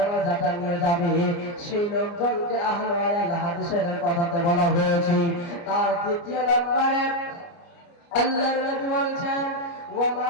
নিয়ে যাবে, সেই লোকজনকে আহল আয়াল হাদিসের কথাতে বলা হয়েছে। তার দ্বিতীয় নম্বরে আল্লাহর নবী বলেছেন, ওয়া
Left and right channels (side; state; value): right; late; 29 ms